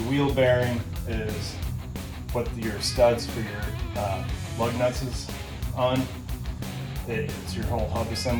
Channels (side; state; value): both; identical; correlation 1.00